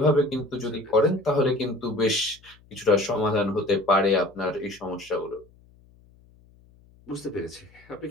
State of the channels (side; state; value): left; noise; hum, 28 dB below the sound